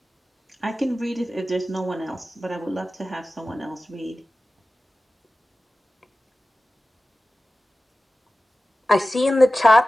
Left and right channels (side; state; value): both; normal; correlation 0.95